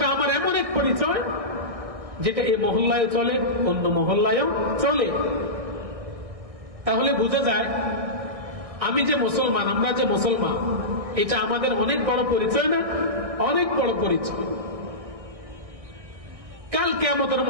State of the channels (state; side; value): late; left; 1.6 ms